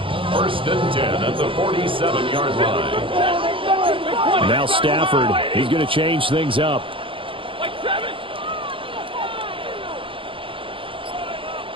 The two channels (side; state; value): left; late; 0.25 ms